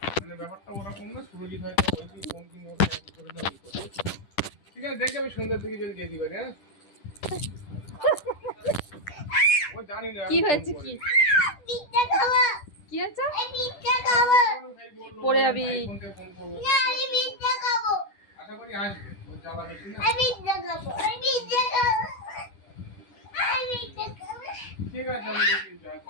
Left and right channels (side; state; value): right; late; 10 ms